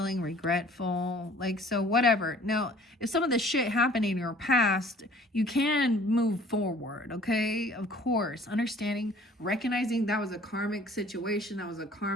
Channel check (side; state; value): both; normal; correlation 0.52